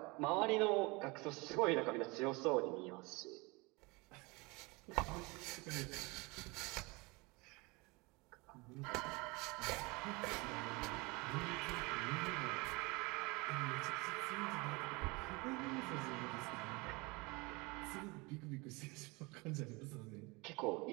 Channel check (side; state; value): left; quieter; 25.9 dB